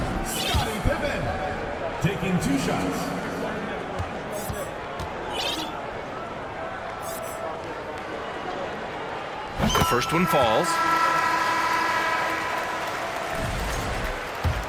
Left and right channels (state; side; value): identical; both; correlation 1.00